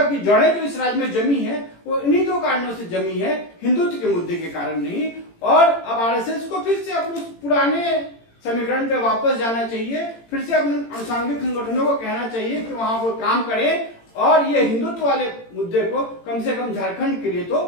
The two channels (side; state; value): right; late; 18 ms